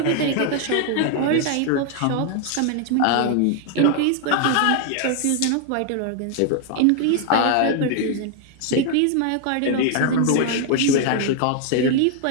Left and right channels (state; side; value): different; both; correlation 0.00